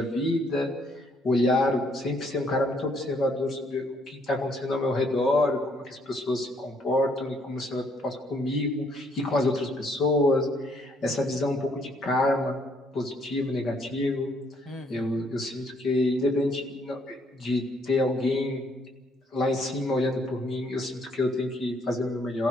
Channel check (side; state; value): both; normal; correlation 0.68